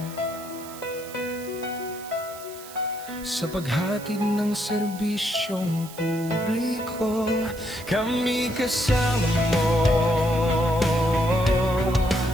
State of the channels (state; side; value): noise; right; hiss, 16 dB below the sound